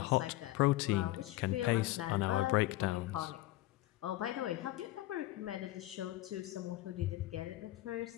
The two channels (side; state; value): right; quieter; 16.8 dB